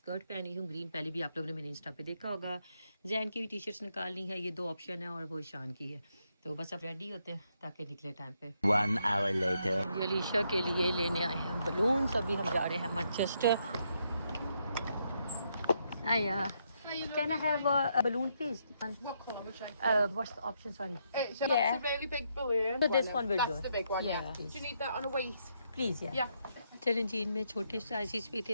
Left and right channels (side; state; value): both; inverted; correlation -0.77